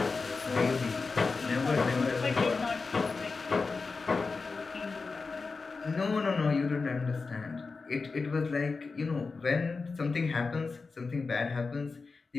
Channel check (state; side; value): quieter; right; 4.3 dB